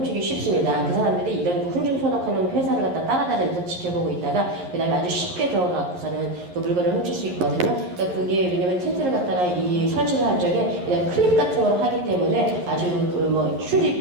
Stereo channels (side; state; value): left; late; 11 ms